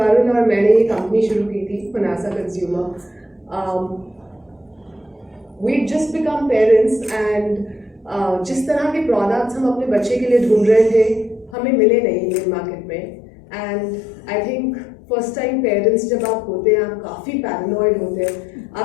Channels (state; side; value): drops out; right; at 11.6 s